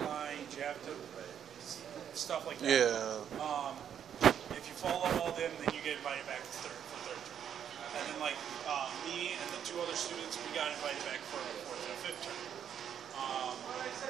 you have to, stuff like that. Yeah. If you follow all them, then you get invited back for third term. And then like me and the two other students, we got invited back for fourth and fifth term.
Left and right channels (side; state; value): left; quieter; 8.9 dB